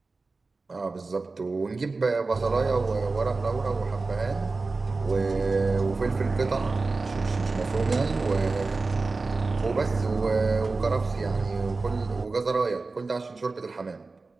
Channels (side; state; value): left; quieter; 3.8 dB